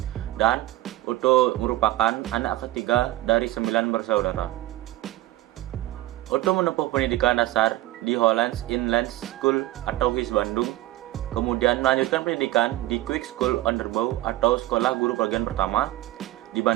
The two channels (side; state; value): left; quieter; 16.5 dB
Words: Dan Oto merupakan anak ketiga dari 9 bersaudara. Oto menempuh pendidikan dasar di Hollands Inland School atau HIS Bandung, kemudian melanjutkan pendidikan di Quick School Onderbouw atau Sekolah Guru Bagian Pertama di